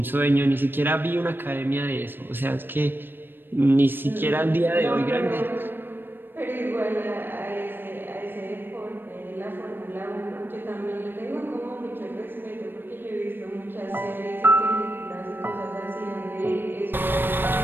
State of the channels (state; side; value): late; left; 0.096 ms